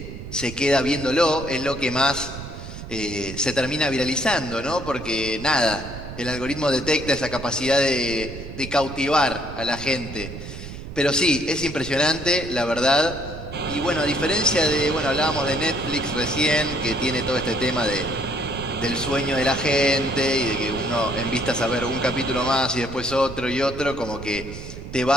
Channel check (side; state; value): right; noise; rumble, 11 dB below the sound